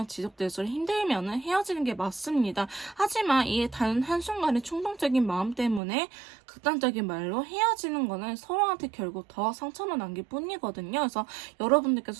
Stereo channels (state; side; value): drops out; left; at 5.8 s